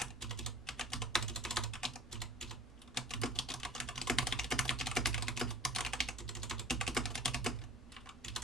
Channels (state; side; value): normal; both; correlation 0.43